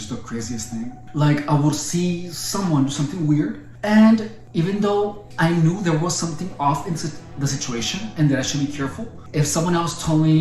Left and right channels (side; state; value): both; identical; correlation 1.00